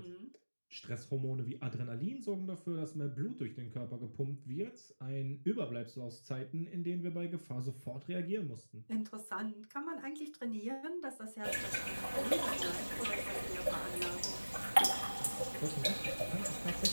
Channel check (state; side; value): inverted; both; correlation -1.00